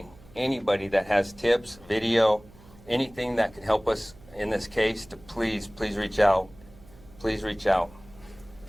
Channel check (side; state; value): right; noise; hum, 23 dB below the sound